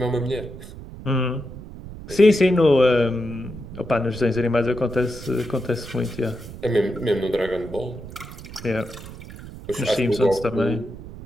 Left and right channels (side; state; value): right; noise; rumble, 13 dB below the sound